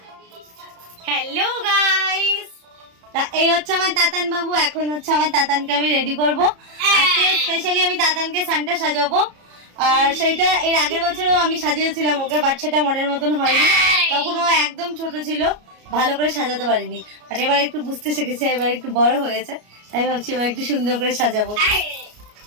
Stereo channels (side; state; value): left; late; 33 ms